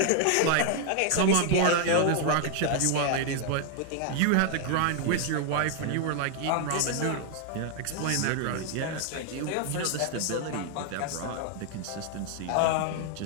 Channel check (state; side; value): different; both; correlation 0.00